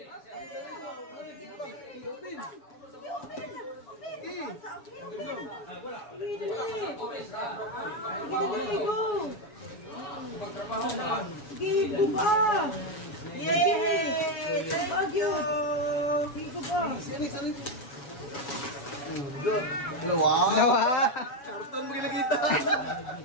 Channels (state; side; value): late; right; 7.1 ms